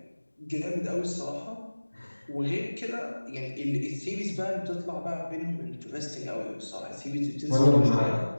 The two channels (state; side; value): inverted; both; correlation -1.00